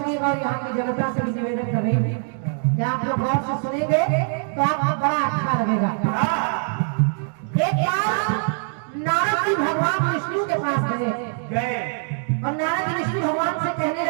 सुनिएगा। और यहाँ की जनता से भी निवेदन कर रही हूँ कि आप लोग गौर से सुनेंगे तो आपको बड़ा अच्छा लगेगा। एक बार नारद जी भगवान विष्णु के पास गए और नारद जी विष्णु भगवान से कहने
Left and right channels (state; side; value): silent; left; 63 dB below the other